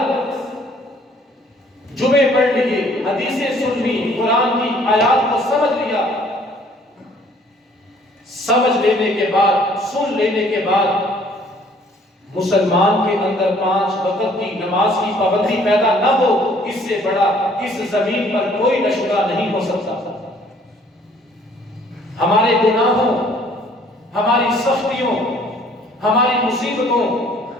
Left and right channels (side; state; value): both; normal; correlation 0.58